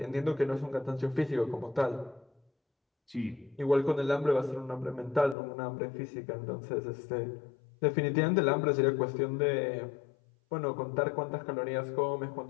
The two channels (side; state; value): right; drops out; at 5.4 s